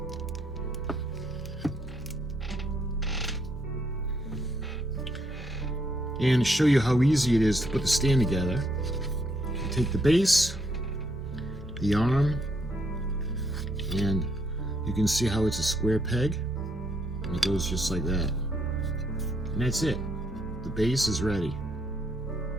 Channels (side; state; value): both; normal; correlation 0.73